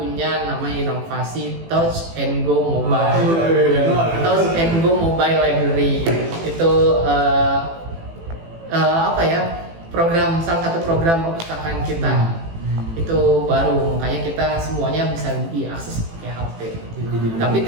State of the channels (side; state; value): left; late; 18 ms